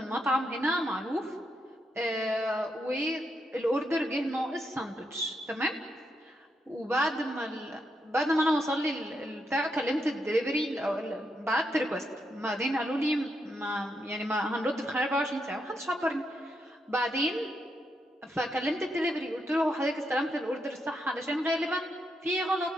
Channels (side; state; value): both; normal; correlation 0.81